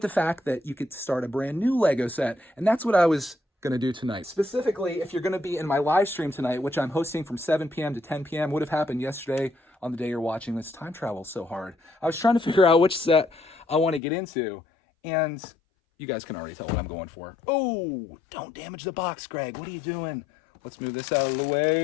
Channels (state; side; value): drops out; right; at 14.0 s